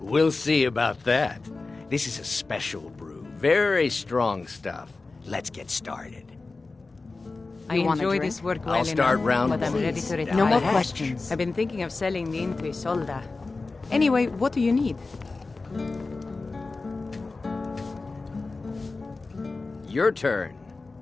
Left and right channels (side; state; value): right; quieter; 3.7 dB